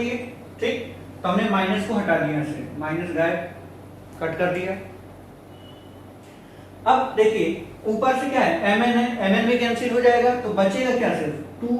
ठीक, तो हमने माइनस को हटा दिया, से माइनस गायब, कट कर दिया। अब देखिए ऊपर से क्या है, MN है, MN भी कैंसिल हो जाएगा, तो बचेगा क्या, सिर्फ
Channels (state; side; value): identical; both; correlation 1.00